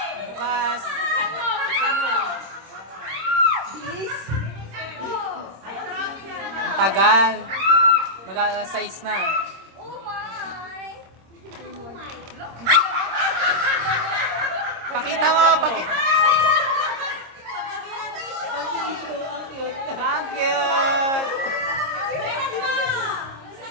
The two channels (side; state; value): left; late; 26 ms